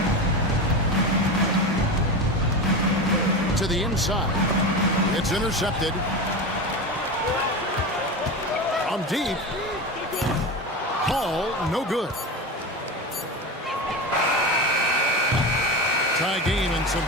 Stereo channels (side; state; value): both; normal; correlation 0.23